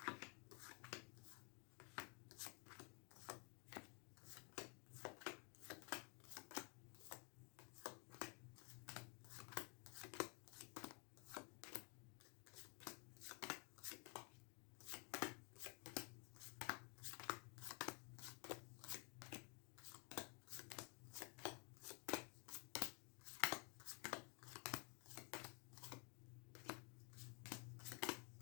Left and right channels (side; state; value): right; quieter; 35.4 dB